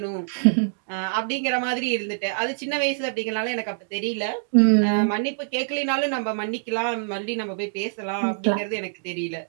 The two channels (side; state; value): left; silent; digital silence